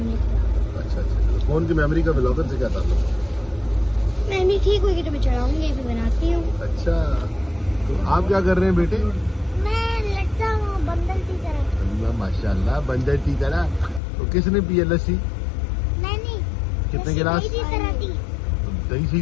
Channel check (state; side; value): drops out; right; at 14.0 s